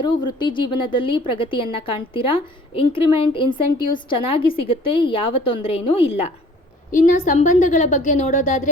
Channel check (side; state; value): both; normal; correlation 0.52